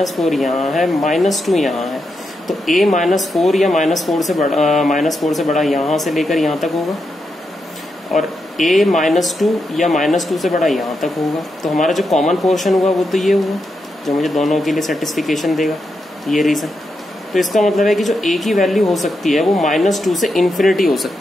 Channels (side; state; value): both; normal; correlation 0.85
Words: यहाँ है, -2 यहाँ है, तो a -4 या -4 से बड़ा यहाँ से लेकर यहाँ तक होगा और a -2 या -2 से बड़ा यहाँ तक होगा। तो हमारा जो कॉमन पोर्शन हुआ वो तो ये हुआ जो मुझे दोनों के लिए सेटिस्फिकेशन देगा, ये रीजन। तो इसका मतलब है कि जो a की वैल्यू हो सकती है वो -2 से इन्फिनिटी हो